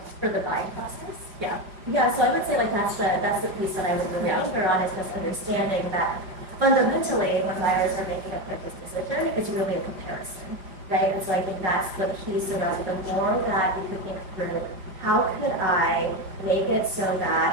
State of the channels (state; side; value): late; left; 5.4 ms